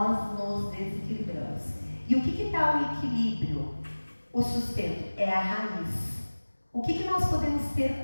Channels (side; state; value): both; inverted; correlation -1.00